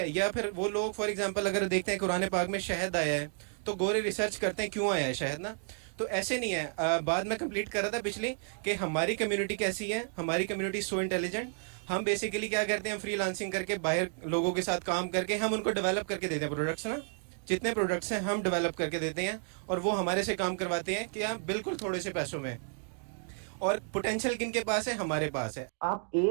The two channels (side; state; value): left; silent; 57 dB below the other